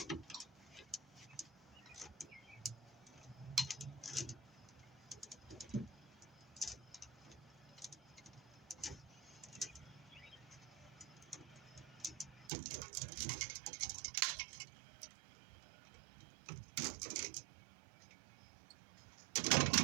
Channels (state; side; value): drops out; left; at 12.5 s